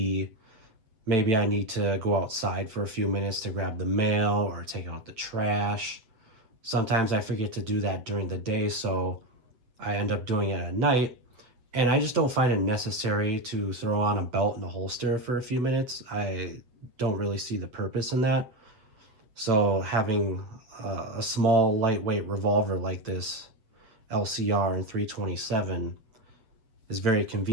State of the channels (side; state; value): left; late; 8.2 ms